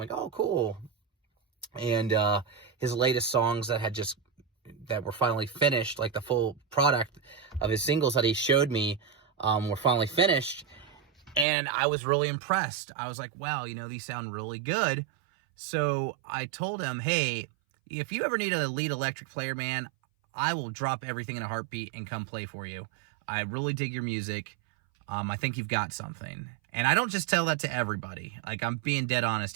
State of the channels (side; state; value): left; drops out; at 11.5 s